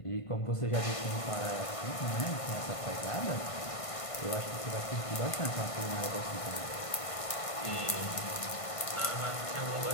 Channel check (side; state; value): right; late; 1.6 ms